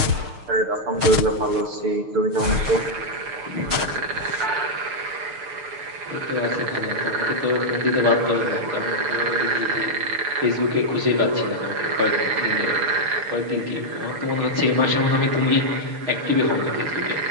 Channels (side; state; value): left; late; 6.5 ms